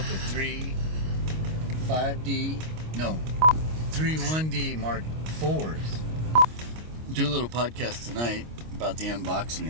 with three 1D Mark IVs. Do a little podcast tonight about the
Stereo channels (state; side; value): late; left; 25 ms